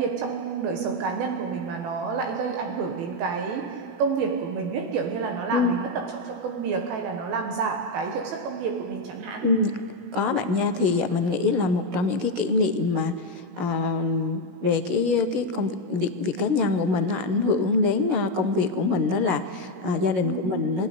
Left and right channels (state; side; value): late; left; 16 ms